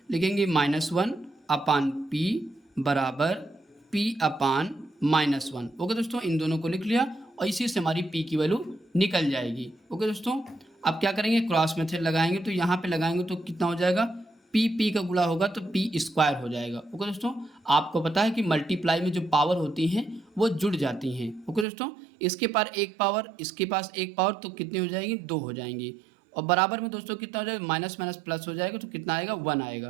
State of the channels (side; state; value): left; drops out; at 21.7 s